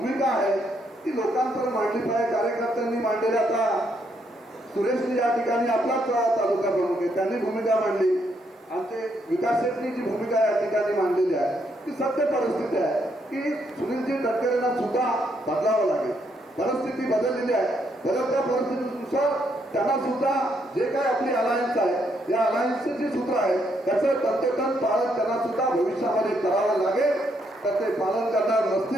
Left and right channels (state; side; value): normal; both; correlation 0.75